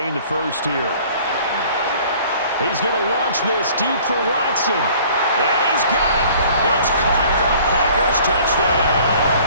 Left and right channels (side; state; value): both; inverted; correlation -0.52